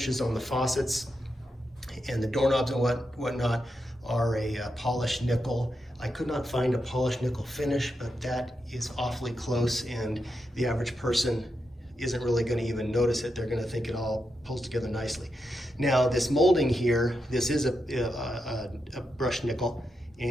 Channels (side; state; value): both; normal; correlation 0.85